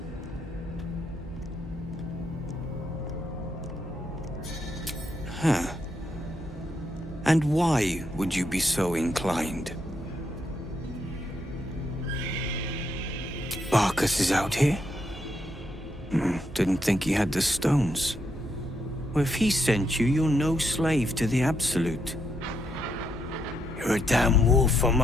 Huh. And why would you be so inclined? Barkus is out here? Didn't think he had the stones. Well, if he sent you, you're no slave to the Absolute. You're a damn wolf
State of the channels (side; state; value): both; normal; correlation 0.78